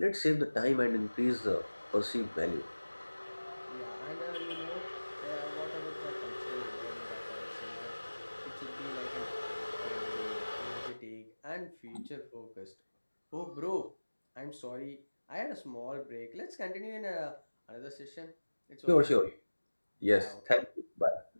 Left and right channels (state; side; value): inverted; both; correlation -1.00